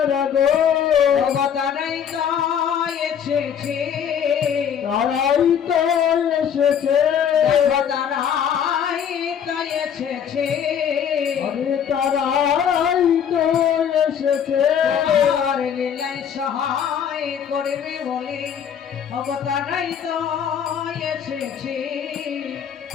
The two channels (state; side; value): quieter; right; 8.3 dB